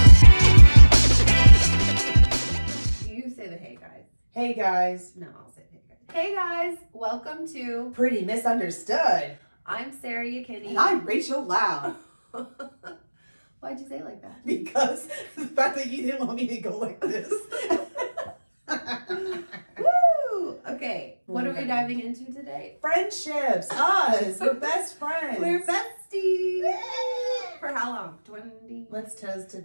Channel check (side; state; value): both; inverted; correlation -1.00